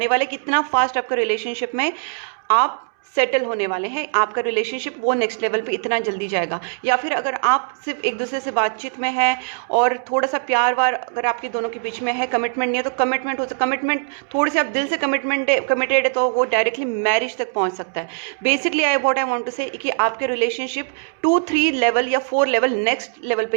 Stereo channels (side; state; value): left; silent; 65 dB below the other